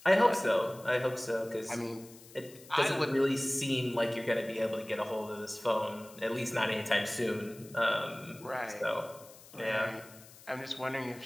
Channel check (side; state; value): left; noise; hiss, 21 dB below the sound